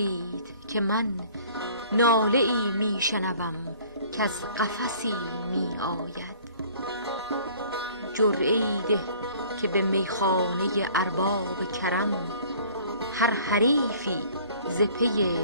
که من ناله ای می شنوم که از قفسی می آید. جرعه ای ده که به میخانه ارباب کرم، هر حریفی ز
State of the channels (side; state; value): both; inverted; correlation -0.52